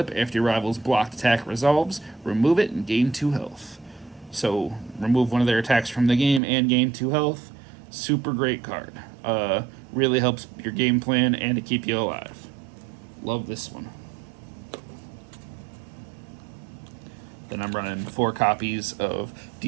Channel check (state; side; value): drops out; left; at 6.4 s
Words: after your rival's blocked attack resolves, remove it and gain 2 health. So remove 1 of their attacks from the game and gain 2 health. Super great card. Really helps your game plan and to keep you alive. Love this one. Then I'm running 4 copies of